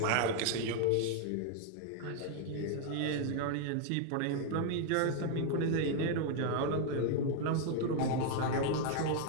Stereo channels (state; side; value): different; both; correlation 0.00